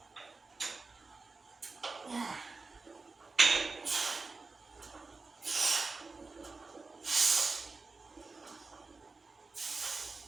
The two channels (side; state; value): left; quieter; 4.0 dB